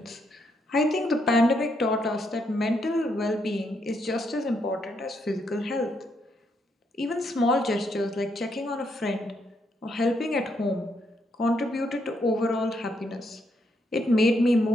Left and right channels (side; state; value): both; normal; correlation 0.77